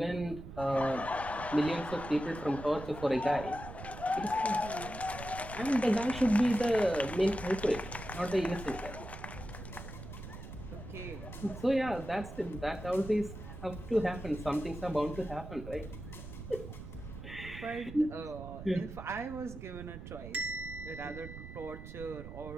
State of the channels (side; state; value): right; noise; rumble, 11 dB below the sound